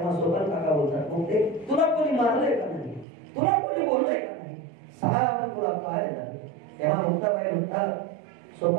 सोपान काका बोलतात, मुक्ते तुला कोणी मारलंय का नाही? तुला कोणी बोललंय का नाही? सांग तुला काय झालं? तेव्हा मुक्ताबाई म्हणतात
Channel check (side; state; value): left; drops out; at 3.1 s